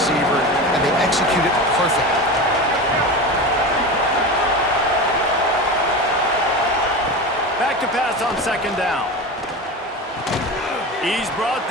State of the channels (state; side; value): normal; both; correlation 0.26